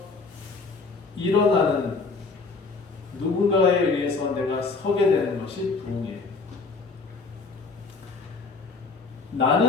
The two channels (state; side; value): quieter; right; 4.2 dB